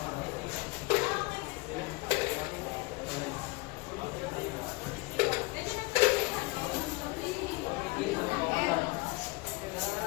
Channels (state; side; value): quieter; right; 24.4 dB